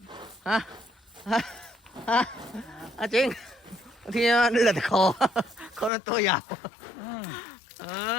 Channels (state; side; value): drops out; right; at 5.9 s